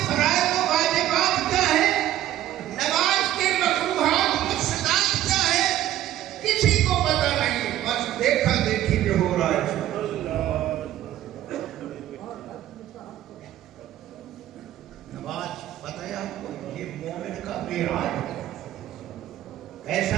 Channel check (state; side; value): quieter; left; 13.0 dB